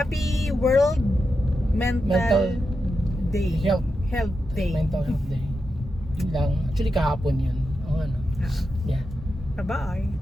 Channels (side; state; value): both; normal; correlation 0.88